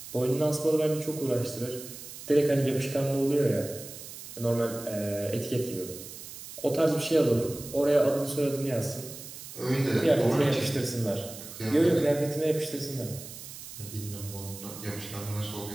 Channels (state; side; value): noise; right; hiss, 13 dB below the sound